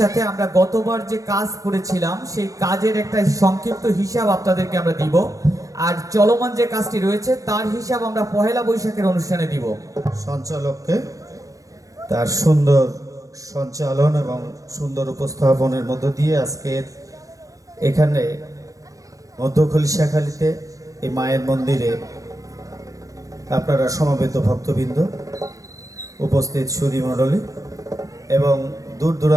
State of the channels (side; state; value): left; late; 0.16 ms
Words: আমরা গতবার যে কাজ করেছিলাম সেই কাজের একটা সংক্ষিপ্ত হিসাব আপনাদেরকে আমরা দিব, আর চলমান যে কাজটি রয়েছে তার হিসাব আমরা পহেলা বৈশাখের অনুষ্ঠানে দিব। সঞ্চালককে তার সুন্দর সঞ্চালন এবং সুন্দর উপস্থাপনের মধ্য দিয়ে আজকের এখানে মধ্য খলিশাখালীতে এই মায়ের মন্দিরে আপনারা সমবেত ভক্তবৃন্দ, উপস্থিত সুধী মণ্ডলী এবং দূর